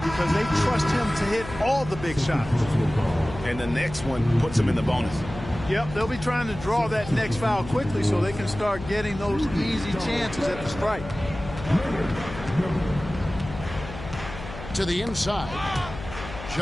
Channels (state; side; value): noise; left; hum, 12 dB below the sound